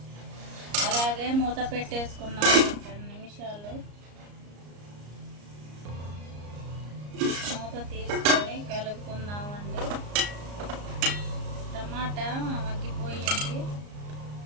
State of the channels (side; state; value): left; late; 34 ms